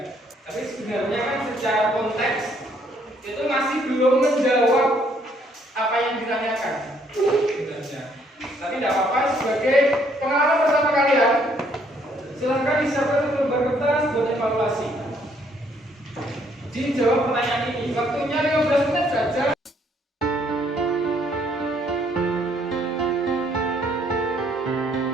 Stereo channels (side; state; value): both; normal; correlation 0.67